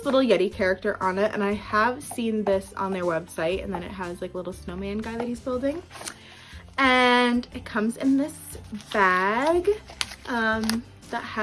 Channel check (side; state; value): both; identical; correlation 1.00